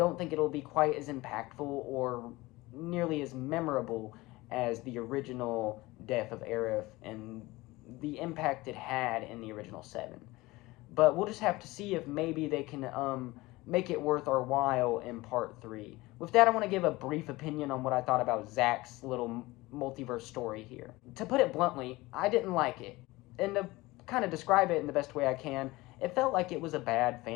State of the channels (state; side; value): quieter; right; 20.5 dB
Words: think it'll be quite as impactful or nearly as memorable as the original death of Aerith and the impact it had in the original 7. But we'll just have to see if maybe they can make it worth our while in Part 3. With that, I want to give a brief opinion on what I thought about Zack's little multiverse story here. To put it bluntly, I didn't like it. And to kind of describe it in the best way I can, it felt like it was a bad